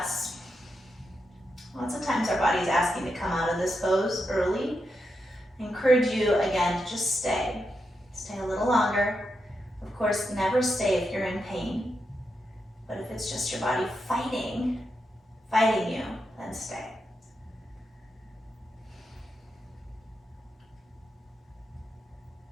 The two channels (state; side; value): normal; both; correlation 0.85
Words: Lots of times our body's asking to come out of this pose early. I encourage you, again, to just stay. Stay a little longer. Of course, never stay if you're in pain. But if it's just your body fighting you, then stay.